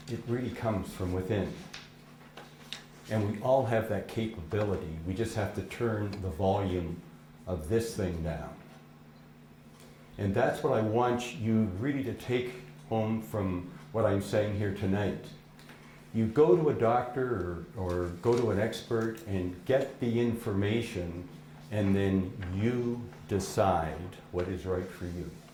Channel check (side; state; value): both; identical; correlation 1.00